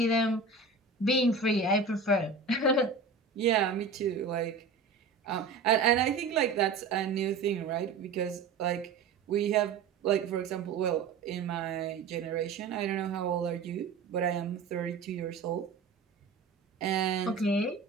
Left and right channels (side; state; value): left; quieter; 4.6 dB